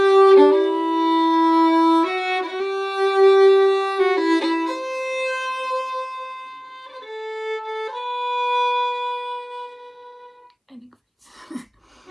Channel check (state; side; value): identical; both; correlation 1.00